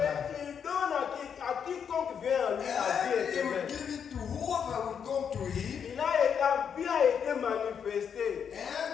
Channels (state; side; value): quieter; right; 7.5 dB